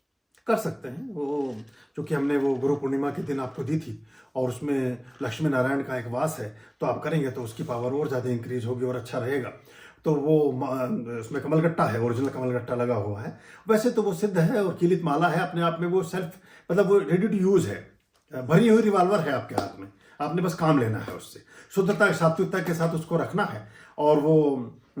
कर सकते हैं। वो चूंकि हमने वो गुरु पूर्णिमा के दिन आपको दी थी और उसमें लक्ष्मी नारायण का एक वास है, तो आप करेंगे तो उसकी पावर और ज़्यादा इंक्रीज होगी और अच्छा रहेगा। तो वो उसमें कमलगट्टा है, ओरिजिनल कमलगट्टा लगा हुआ है। वैसे तो वो सिद्ध है और कीलित माला है अपने आप में, वो सेल्फ मतलब वो रेडी टू यूज़ है, भरी हुई रिवॉल्वर है आपके हाथ में, आपने बस काम लेना है उससे, शुद्धता सात्विकता के साथ उसको रखना है और वो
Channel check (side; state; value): both; identical; correlation 1.00